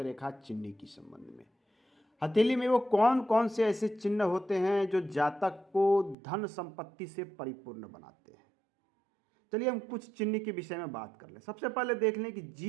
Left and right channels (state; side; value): drops out; left; at 6.2 s